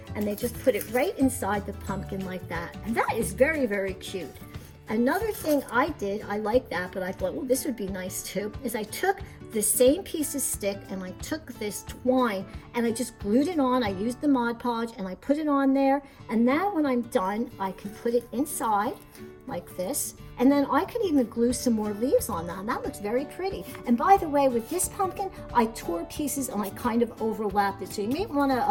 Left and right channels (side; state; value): both; identical; correlation 1.00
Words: and they just put it right inside the pumpkin like that, and that is very, very cute. Another thing I did, I like that, but I thought, well, this would be nice too, is I took the same piece of stick and I took this twine and I just glued it on. I used the Mod Podge and I put it on there. And now when I'm done, I can put it inside like this. And then I can even glue some more leaves on that. And that looks very pretty. And by the way, with this pumpkin, I tore pieces and I kind of overlapped it. So you may want